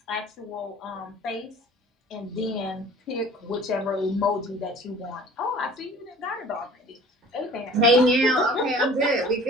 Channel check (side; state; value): both; normal; correlation 0.47